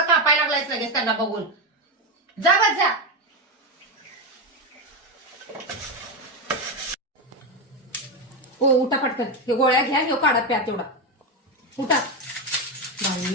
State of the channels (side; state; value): both; normal; correlation 0.11